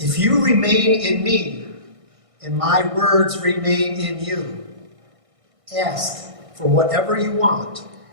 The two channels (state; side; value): late; left; 1.6 ms